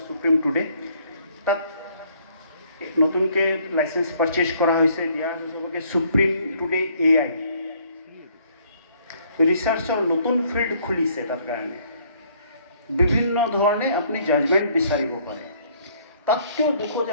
সুপ্ৰিম টুডে তাত নতুনকৈ লাইচেঞ্চ পাৰচেজ কৰা হৈছে দিয়া আছে চবকে সুপ্ৰিম টুডে AI ৰিচাৰ্চৰ নতুন ফিল্ড খুলিছে তাৰ কাৰণে বিভিন্ন ধৰণে আপুনি জাজমেণ্ট বিচাৰিব পাৰে তাতকৈও দুখত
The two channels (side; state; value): both; inverted; correlation -0.63